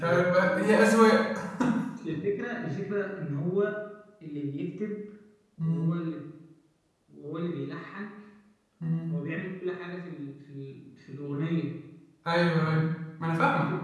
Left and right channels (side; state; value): both; identical; correlation 1.00